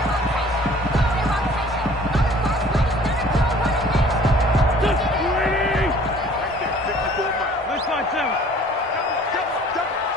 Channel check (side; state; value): both; normal; correlation 0.52